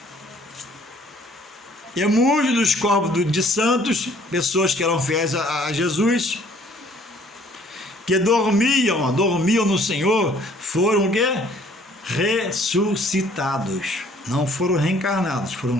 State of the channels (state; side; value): normal; both; correlation 0.59